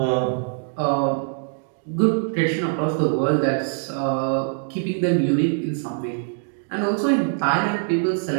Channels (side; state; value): left; silent; digital silence